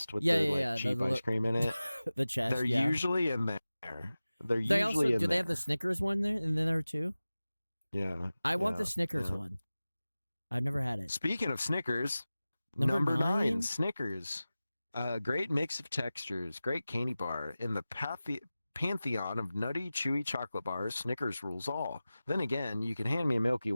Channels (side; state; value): both; inverted; correlation -0.96